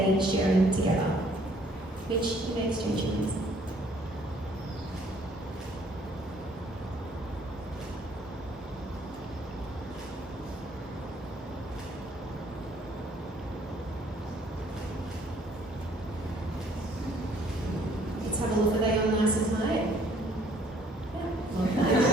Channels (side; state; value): both; normal; correlation 0.61